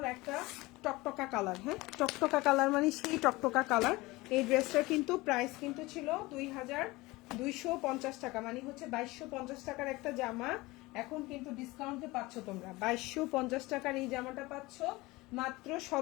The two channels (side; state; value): right; quieter; 21.3 dB